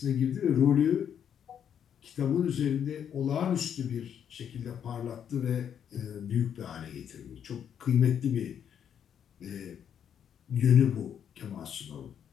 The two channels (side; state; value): right; quieter; 8.7 dB